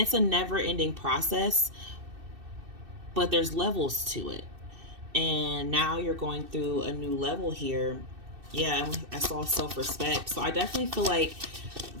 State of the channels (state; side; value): late; left; 2.6 ms